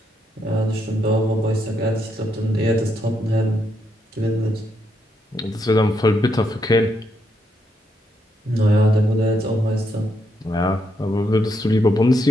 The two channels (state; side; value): normal; both; correlation 0.78